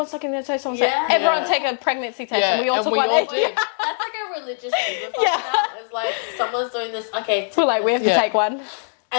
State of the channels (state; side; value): silent; right; digital silence